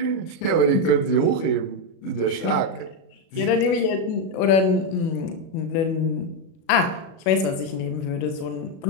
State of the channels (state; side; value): late; right; 37 ms